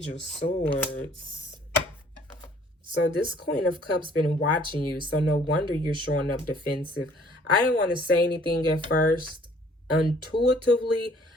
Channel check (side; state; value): both; normal; correlation 0.58